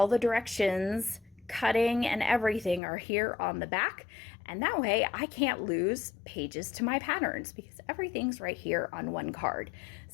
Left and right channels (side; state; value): right; drops out; at 2.8 s